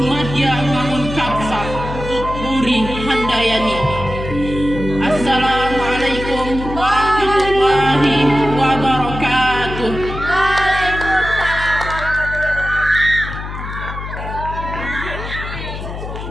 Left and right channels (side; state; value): left; noise; hum, 8 dB below the sound